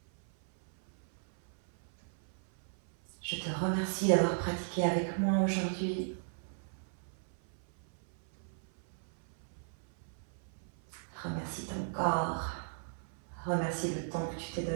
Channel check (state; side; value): silent; left; 54 dB below the other